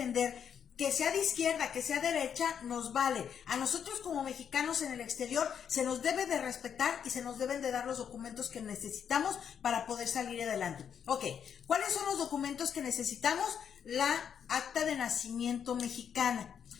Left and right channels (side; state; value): right; quieter; 8.0 dB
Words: Que sea de izquierda, que sea derecha, nos vale. A nosotros como mexicanos en el exterior se nos debe de respetar y se nos deben de dar los documentos que necesitamos para poder salir adelante. Ok, ¿cuáles son los documentos que necesitamos? La acta de nacimiento mexicana.